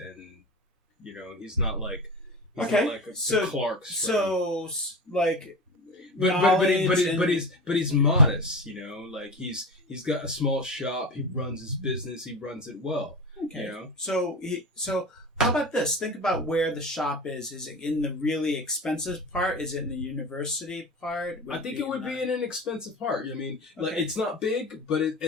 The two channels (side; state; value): both; normal; correlation 0.28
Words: he's not like a Clark's friend. So like, but he's modest, like he's got a small shop, he runs his business, he runs it well. Okay. So how about this? Think about where the shop is. Is it in the really expensive part? Is it in the university part? I think it would be in an expensive part. I mean, like, it's not big, but